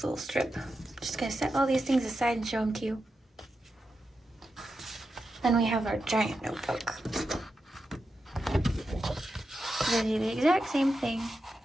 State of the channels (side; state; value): both; normal; correlation 0.89